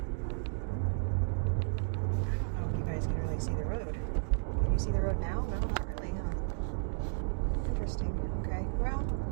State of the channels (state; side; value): silent; left; digital silence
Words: I don't know if you guys can really see the road. Can you see the road now? No, not really, huh? Interesting. Okay. Well,